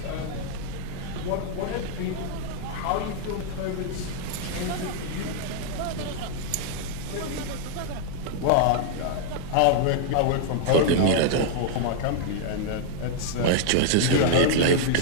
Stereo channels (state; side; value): different; both; correlation -0.01